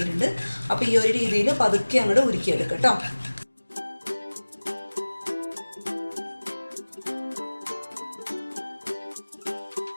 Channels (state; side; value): inverted; both; correlation -1.00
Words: അപ്പോൾ ഈ ഒരു രീതിയിൽ പതുക്കെ അങ്ങോട്ട് ഉരുക്കിയെടുക്കുക കേട്ടോ.